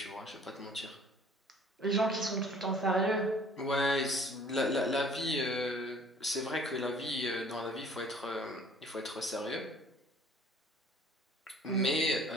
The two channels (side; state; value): both; normal; correlation 0.53